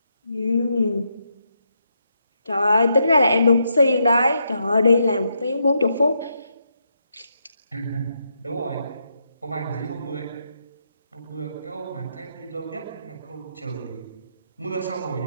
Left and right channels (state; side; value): inverted; both; correlation -0.80